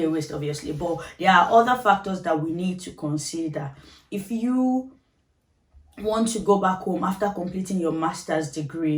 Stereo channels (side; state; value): both; identical; correlation 1.00